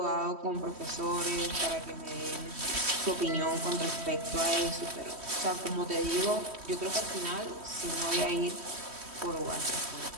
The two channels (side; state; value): left; late; 3.1 ms